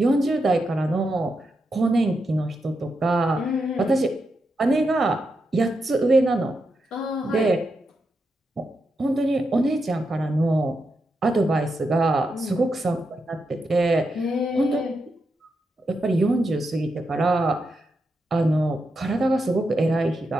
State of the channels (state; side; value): normal; both; correlation 0.85